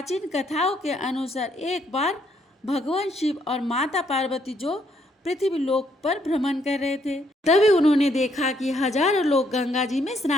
कथाओं के अनुसार एक बार भगवान शिव और माता पार्वती जो पृथ्वी लोक पर भ्रमण कर रहे थे, तभी उन्होंने देखा कि हजारों लोग गंगा जी में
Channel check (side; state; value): both; normal; correlation 0.71